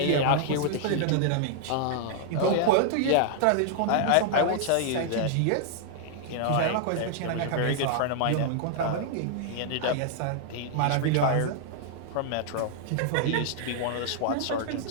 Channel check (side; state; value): both; different; correlation -0.01